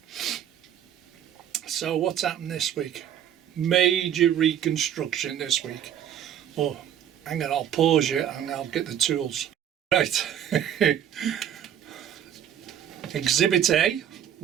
So what's happened this week? Major reconstruction this week. Oh, hang on, I'll pause you and I'll get the tools. Right. Exhibit A,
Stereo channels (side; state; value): left; quieter; 10.0 dB